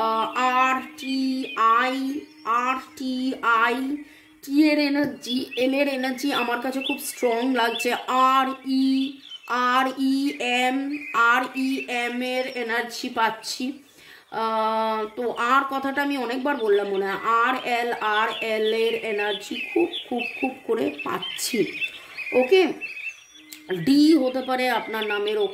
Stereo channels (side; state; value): both; identical; correlation 1.00